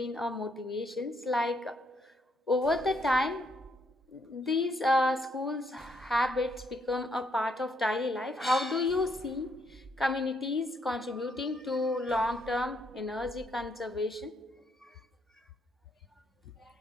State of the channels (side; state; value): both; normal; correlation 0.73